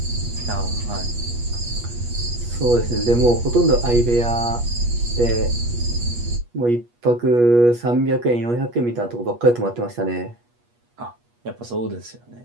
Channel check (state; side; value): late; left; 8.3 ms